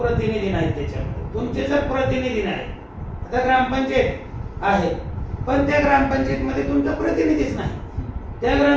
नाहीत त्याच्यामध्ये. तुमचे जर प्रतिनिधी नाही, आता ग्रामपंचायत आहे पण त्या ग्रामपंचायतमध्ये तुमचा प्रतिनिधीच नाही, त्या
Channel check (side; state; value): both; identical; correlation 1.00